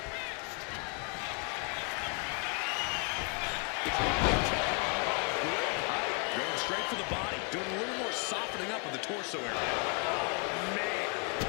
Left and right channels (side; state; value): right; quieter; 37.0 dB